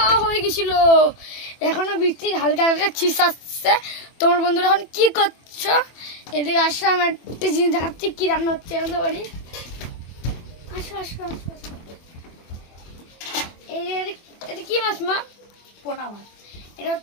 হয়ে গেছিল। এখনো বৃষ্টি হালকা হালকা ছিস আসছে। তোমার বন্ধুরা এখন কি করছো? এদিকে আসো, আমি একটা জিনিস দেখাচ্ছি কি রান্না হচ্ছে আমাদের বাড়ি। আসো আসো আসো। এটা কি মাছ মা? পোনা মাছ। এটা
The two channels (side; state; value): right; late; 24 ms